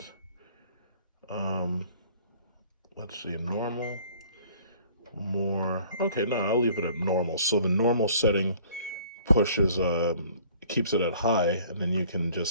normal, more. Okay, no, I'll leave it at normal. So the normal setting pushes, keeps it at high, and then you can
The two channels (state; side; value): inverted; both; correlation -0.53